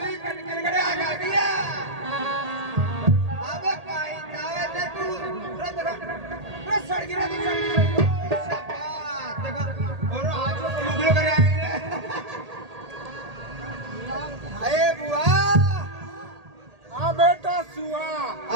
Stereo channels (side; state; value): left; late; 1.8 ms